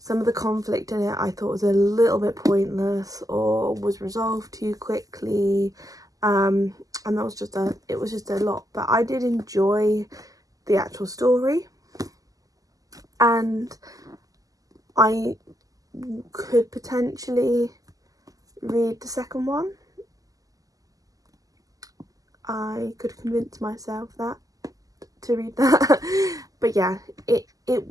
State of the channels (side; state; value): left; late; 0.17 ms